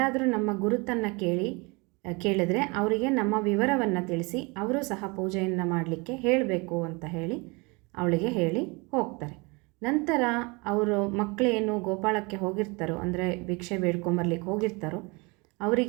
ನಮ್ಮ ಗುರುತನ್ನು ಕೇಳಿದ್ರೆ ಅವರಿಗೆ ನಮ್ಮ ವಿವರವನ್ನು ತಿಳಿಸಿ ಅವರು ಸಹ ಪೂಜೆಯನ್ನು ಮಾಡಲಿಕ್ಕೆ ಹೇಳಬೇಕು ಅಂತ ಹೇಳಿ ಅವಳಿಗೆ ಹೇಳಿ ಹೋಗ್ತಾರೆ. ನಂತರ ಅವರು ಮಕ್ಕಳೇನು ಗೋಪಾಳಕ್ಕೆ ಹೋಗಿರ್ತಾರೋ, ಅಂದರೆ ಭಿಕ್ಷೆ ಬೇಡ್ಕೊಂಬರ್ಲಿಕ್ಕೆ ಹೋಗಿರ್ತಾರೋ,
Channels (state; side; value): quieter; left; 28.2 dB